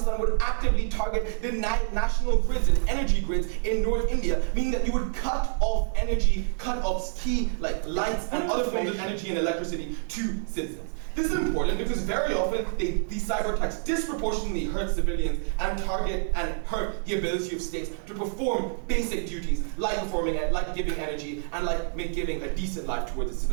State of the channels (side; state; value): left; silent; digital silence